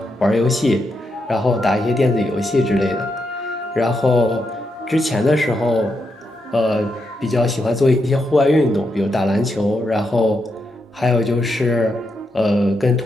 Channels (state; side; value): normal; both; correlation 0.83